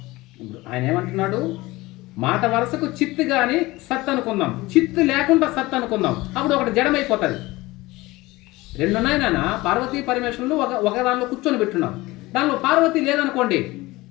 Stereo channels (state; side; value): quieter; right; 20.2 dB